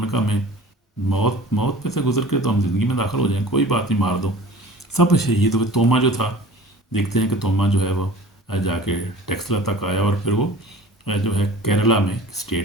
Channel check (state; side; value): normal; both; correlation 0.43